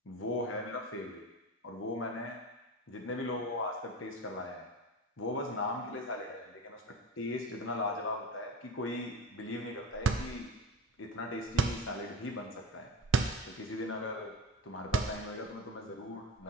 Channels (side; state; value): both; normal; correlation 0.29